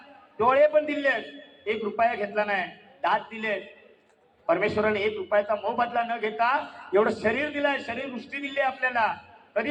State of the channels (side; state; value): both; identical; correlation 1.00